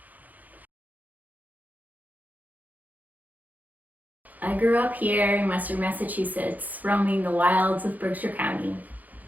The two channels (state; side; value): late; left; 0.081 ms